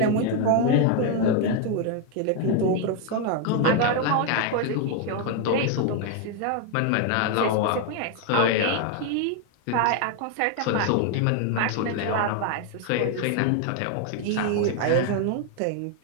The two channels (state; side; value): different; both; correlation 0.01